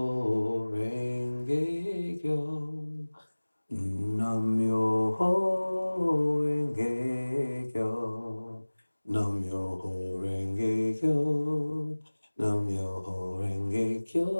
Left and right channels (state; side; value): inverted; both; correlation -1.00